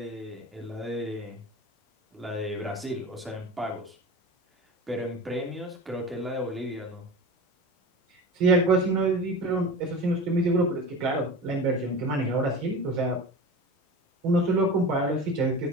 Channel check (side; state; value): both; normal; correlation 0.32